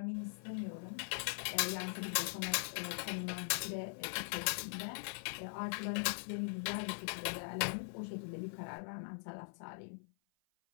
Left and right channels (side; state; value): right; silent; 50 dB below the other